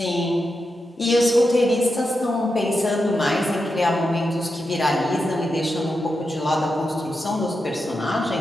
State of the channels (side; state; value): both; normal; correlation 0.87